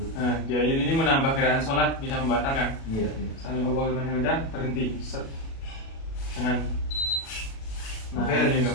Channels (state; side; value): late; right; 37 ms